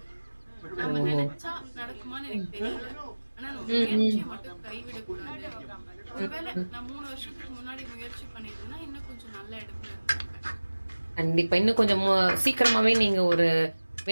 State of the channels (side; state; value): both; inverted; correlation -1.00